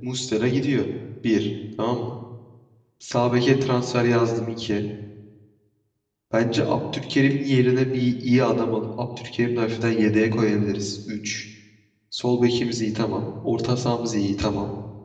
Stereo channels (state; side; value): identical; both; correlation 1.00